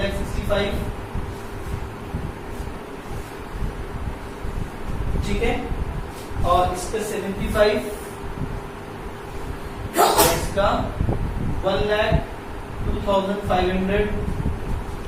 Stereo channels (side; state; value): both; identical; correlation 1.00